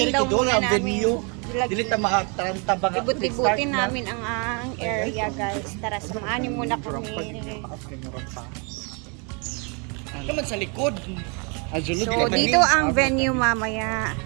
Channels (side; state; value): left; quieter; 34.0 dB